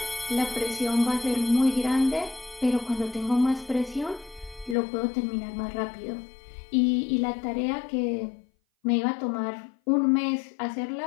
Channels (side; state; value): right; drops out; at 4.8 s